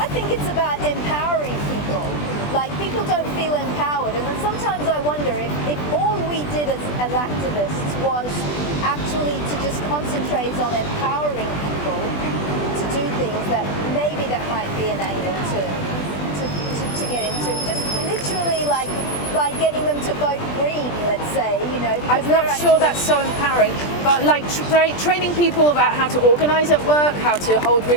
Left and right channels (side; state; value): right; late; 20 ms